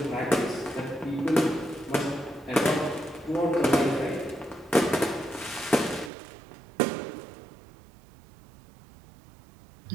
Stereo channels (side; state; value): left; drops out; at 6.1 s